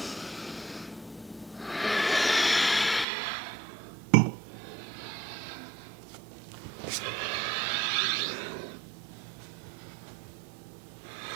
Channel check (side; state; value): left; drops out; at 3.1 s